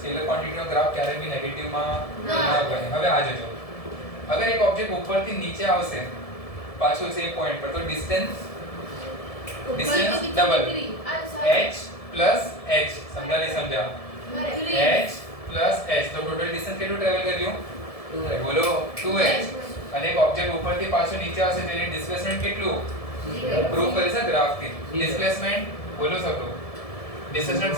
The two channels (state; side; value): late; right; 1.7 ms